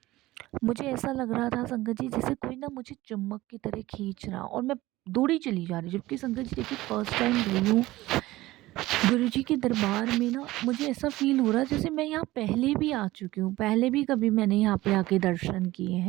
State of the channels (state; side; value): quieter; left; 17.8 dB